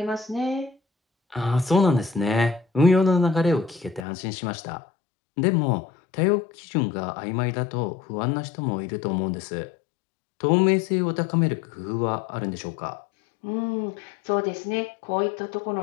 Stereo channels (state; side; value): drops out; right; at 4.0 s